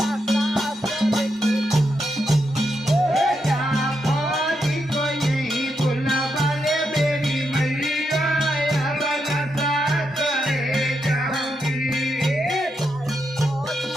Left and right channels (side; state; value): both; normal; correlation 0.83